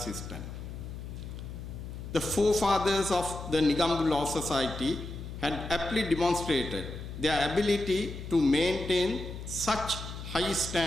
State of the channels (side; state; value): left; noise; hum, 9 dB below the sound